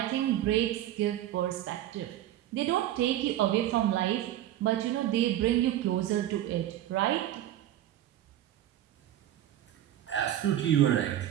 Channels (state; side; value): quieter; left; 12.6 dB